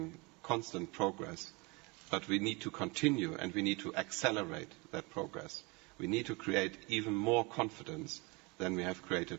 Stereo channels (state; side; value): quieter; left; 27.4 dB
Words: constant progress, but we need to continue and we need to accelerate that progress. We need to create even more confidence than we have